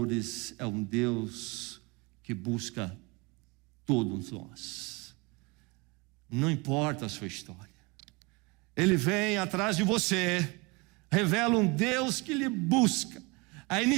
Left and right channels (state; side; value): quieter; left; 27.1 dB